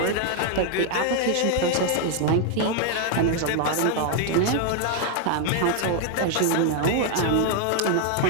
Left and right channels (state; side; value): different; both; correlation 0.00